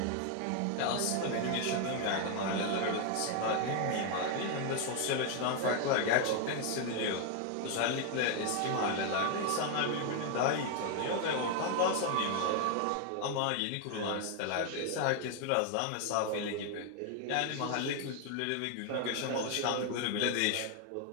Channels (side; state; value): both; different; correlation 0.01